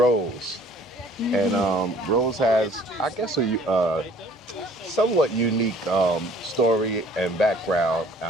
And Rose has, I guess, a somewhat unique story and background.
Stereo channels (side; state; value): both; normal; correlation 0.55